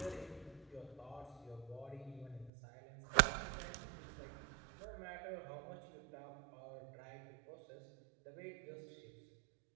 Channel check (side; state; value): left; drops out; at 2.5 s